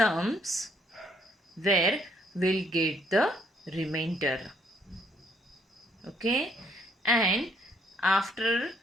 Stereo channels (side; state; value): both; normal; correlation 0.67